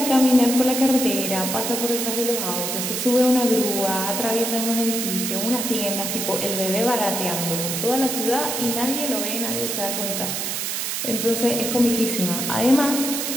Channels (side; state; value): right; noise; hiss, 2 dB below the sound